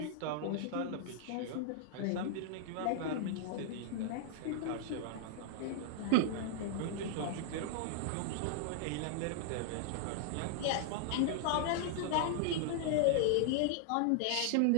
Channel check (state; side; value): different; both; correlation 0.00